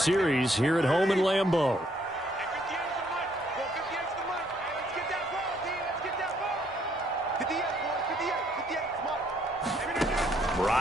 here at home in Lambeau.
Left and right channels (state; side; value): normal; both; correlation 0.68